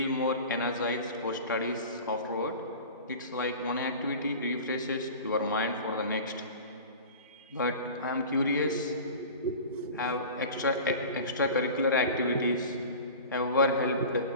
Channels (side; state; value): both; inverted; correlation -0.37